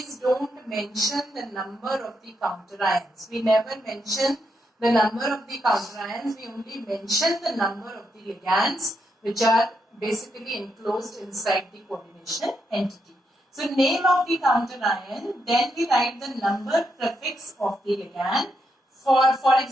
don't mention the number of the counter ions. We never mention the number of the counter ions, we only mention the number of the ligands which are basically enclosed inside the coordination entity. So name of the counter ion, then we write the number prefix of the ligand. For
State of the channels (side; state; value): both; normal; correlation 0.81